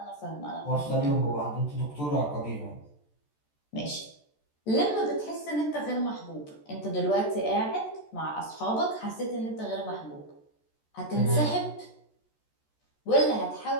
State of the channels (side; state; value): right; late; 14 ms